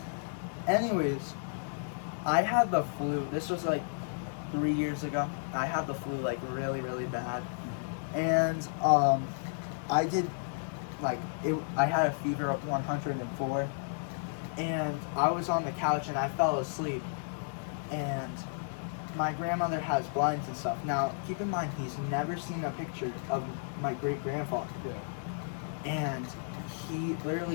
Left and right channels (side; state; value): right; silent; digital silence